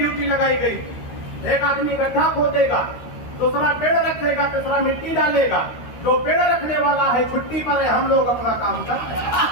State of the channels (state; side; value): late; right; 13 ms